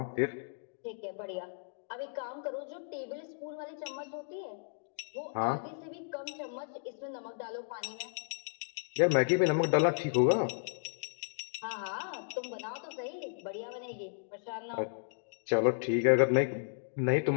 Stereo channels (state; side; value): silent; right; digital silence